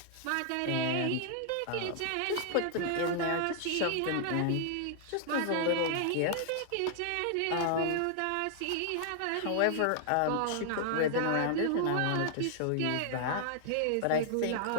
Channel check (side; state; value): both; different; correlation 0.00